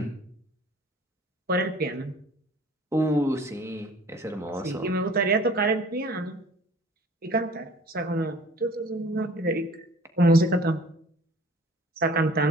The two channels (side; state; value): both; normal; correlation 0.49